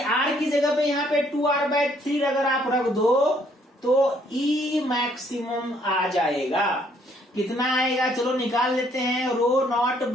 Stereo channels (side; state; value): both; normal; correlation 0.66